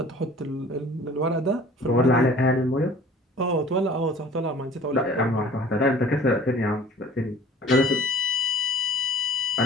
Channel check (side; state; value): both; normal; correlation 0.48